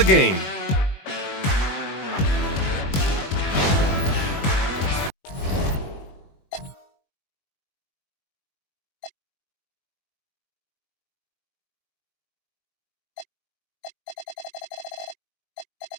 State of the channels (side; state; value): right; late; 21 ms